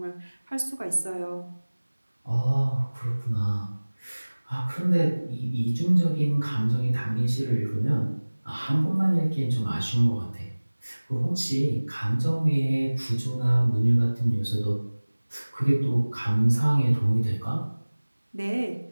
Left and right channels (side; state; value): both; inverted; correlation -1.00